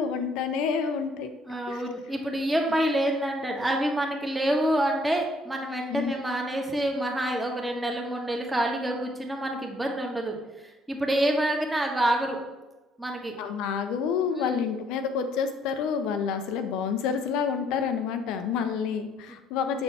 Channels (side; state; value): both; normal; correlation 0.66